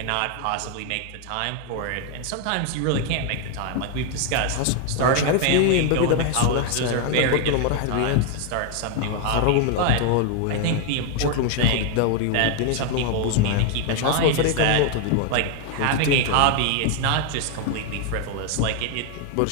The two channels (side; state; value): both; different; correlation 0.00